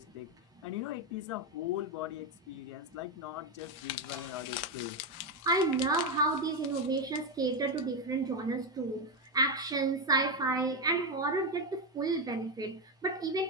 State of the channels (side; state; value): both; normal; correlation 0.09